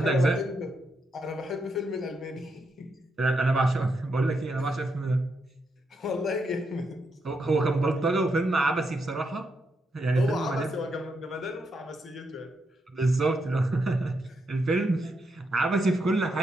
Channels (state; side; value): normal; both; correlation 0.82